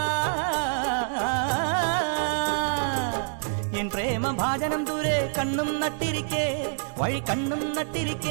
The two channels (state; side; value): silent; left; digital silence